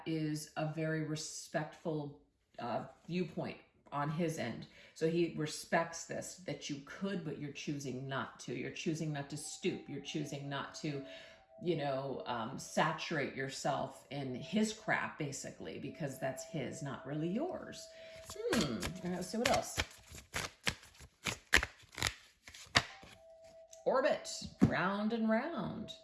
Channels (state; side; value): identical; both; correlation 1.00